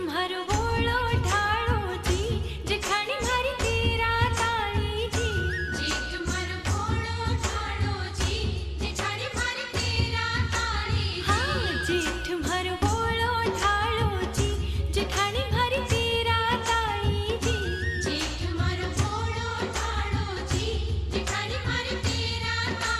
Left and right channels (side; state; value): both; identical; correlation 1.00